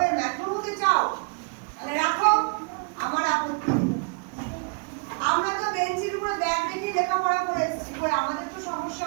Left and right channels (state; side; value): quieter; left; 35.2 dB